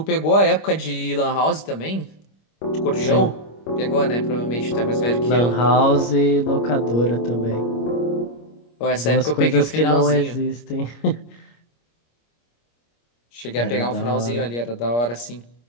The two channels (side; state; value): right; late; 25 ms